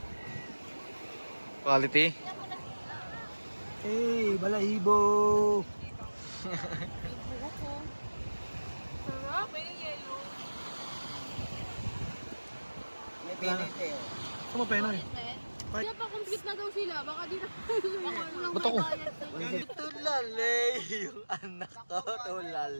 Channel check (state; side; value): inverted; both; correlation -1.00